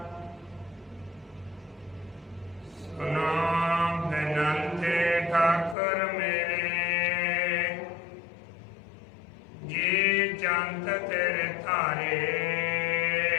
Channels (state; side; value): drops out; right; at 5.8 s